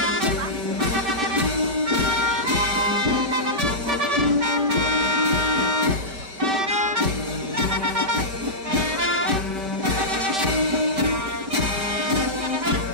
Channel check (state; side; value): late; left; 5.2 ms